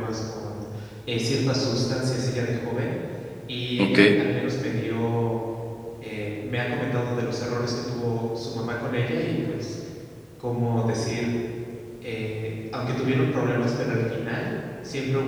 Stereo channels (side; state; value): both; identical; correlation 1.00